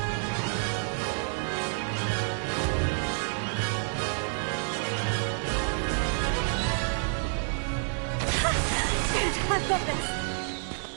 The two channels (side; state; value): left; silent; 59 dB below the other